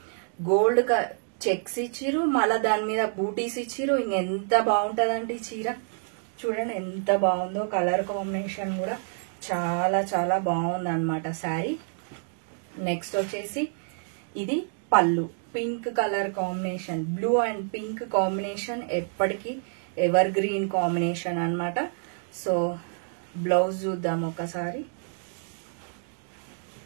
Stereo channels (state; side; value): silent; left; digital silence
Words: గోల్డ్ చెక్స్ ఇచ్చిరు, మళ్ళీ దాని మీద బూటీస్ ఇచ్చిరు. ఇంకెంత బాగుంటుందండి చీర. చూడండి ఎంత బాగుందో, కలర్ కాంబినేషన్ కూడా చాలా చాలా బాగుంది అనమాట శారీ. నెక్స్ట్ వచ్చేసి ఇది పళ్ళు, pink colour combination, blue and pink combination ఎప్పటికీ ఎవర్ గ్రీన్ కాంబినేషన్ అన్నమాట. సో బ్లౌజ్ చూద్దాం ఒకసారి.